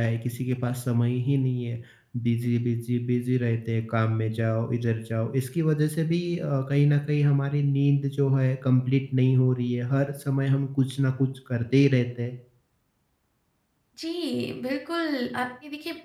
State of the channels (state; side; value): identical; both; correlation 1.00